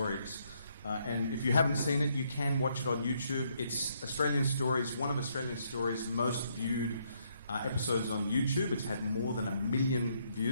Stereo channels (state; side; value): inverted; both; correlation -0.73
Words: And if you haven't seen it, you can watch it on YouTube. It's Australian Stories, one of Australian Stories' most viewed episodes on YouTube. It's had more than 1 million